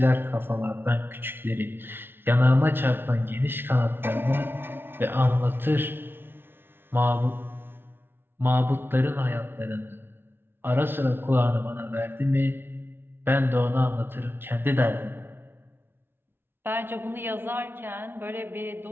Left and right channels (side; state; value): left; late; 0.11 ms